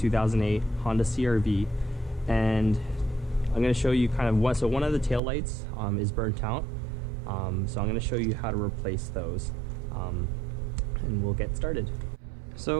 Honda CR-V, and I'm going to show you kind of what. So one of the tail lights is burnt out. So I'm going to show you how to replace those, and we'll get started.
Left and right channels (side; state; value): left; drops out; at 5.2 s